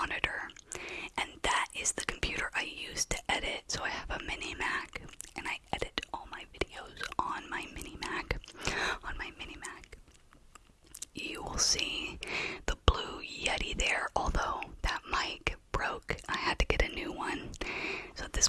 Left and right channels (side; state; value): both; identical; correlation 1.00